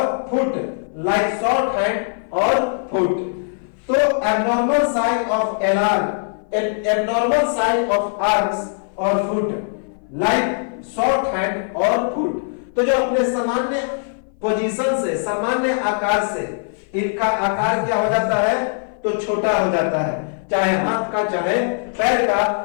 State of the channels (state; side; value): silent; right; 58 dB below the other